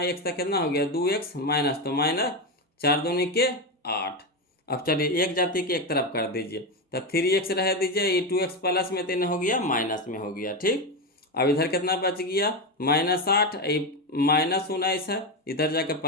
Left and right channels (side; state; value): both; normal; correlation 0.13